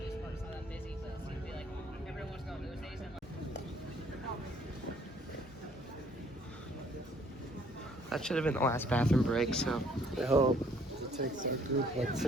That should have been the last bathroom break, so. I hope. It takes our group like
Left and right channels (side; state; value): both; normal; correlation 0.62